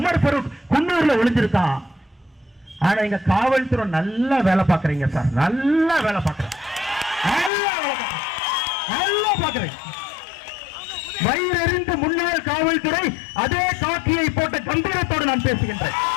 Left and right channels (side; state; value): right; drops out; at 7.5 s